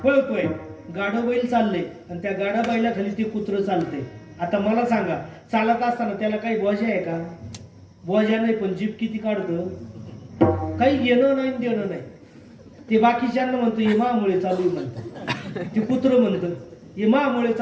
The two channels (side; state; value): both; identical; correlation 1.00